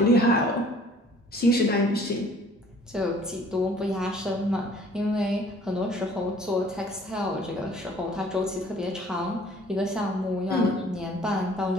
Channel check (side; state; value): both; normal; correlation 0.54